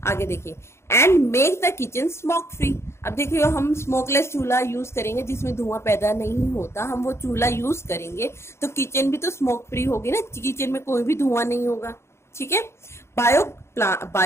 देखिए, and make the kitchen smoke free. अब देखिए, हम स्मोकलेस चूल्हा यूज करेंगे जिसमें धुआं पैदा नहीं होता, हम वो चूल्हा यूज करेंगे तो किचन भी तो स्मोक फ्री होगी ना, किचन में कोई भी धुआं नहीं होगा। ठीक है,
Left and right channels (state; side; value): late; right; 0.13 ms